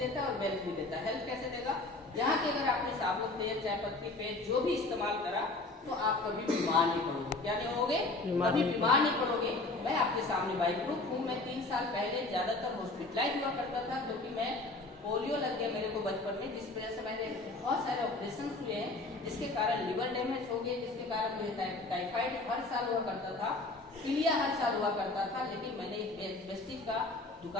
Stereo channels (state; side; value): quieter; right; 3.1 dB